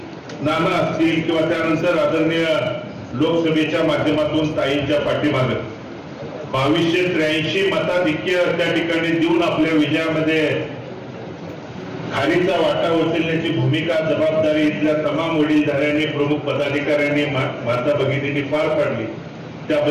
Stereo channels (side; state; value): both; identical; correlation 1.00